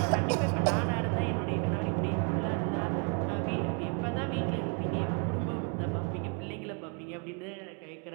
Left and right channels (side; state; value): left; quieter; 38.5 dB